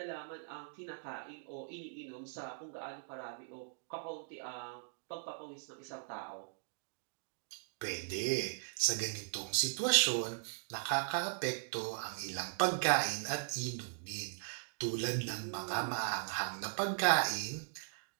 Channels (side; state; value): left; silent; digital silence